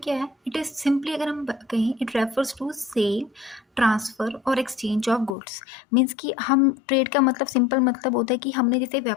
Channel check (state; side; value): drops out; right; at 5.4 s